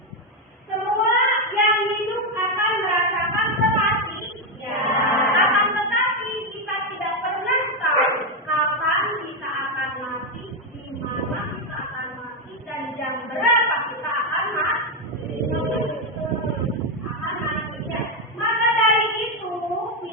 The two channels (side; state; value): both; normal; correlation 0.06